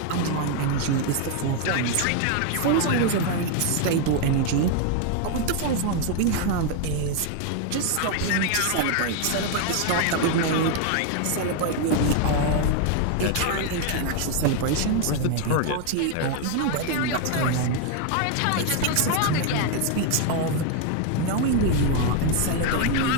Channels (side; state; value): both; different; correlation 0.01